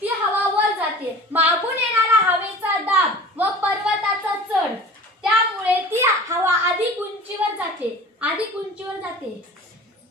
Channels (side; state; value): both; normal; correlation 0.41